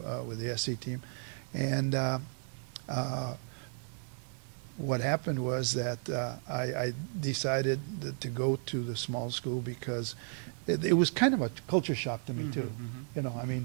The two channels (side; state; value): left; silent; 55 dB below the other